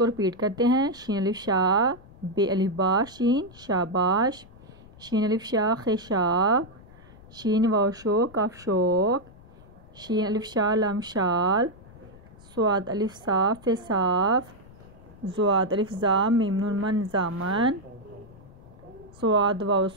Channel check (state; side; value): noise; left; rumble, 22 dB below the sound